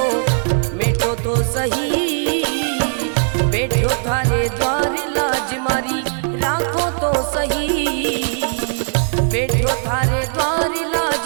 मिटो तो सही, बैठो थारे द्वार लाज मारी राखो तो सही, बैठो थारे द्वार लाज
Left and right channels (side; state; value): left; silent; digital silence